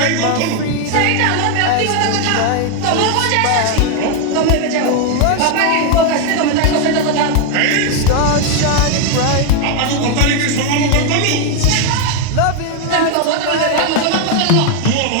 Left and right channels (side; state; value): both; different; correlation 0.01